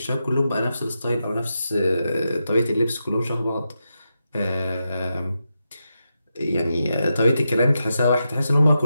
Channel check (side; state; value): both; inverted; correlation -0.88